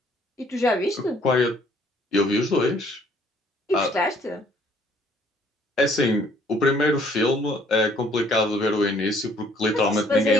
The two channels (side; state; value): both; normal; correlation 0.61